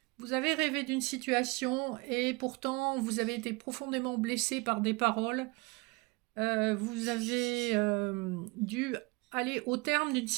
Vous avez rêvé d'une situation et pourtant vous avez été profondément blessé par des paroles. Vous avez dû aller au terme d'une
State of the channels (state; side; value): quieter; left; 26.0 dB